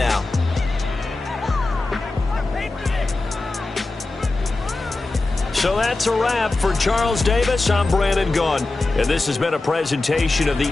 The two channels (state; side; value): quieter; right; 3.2 dB